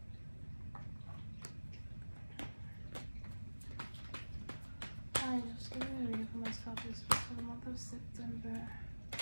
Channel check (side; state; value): both; inverted; correlation -1.00